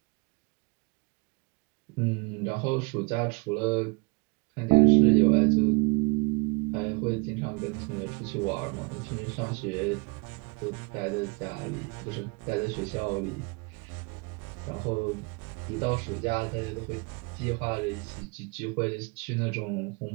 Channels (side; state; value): left; quieter; 30.2 dB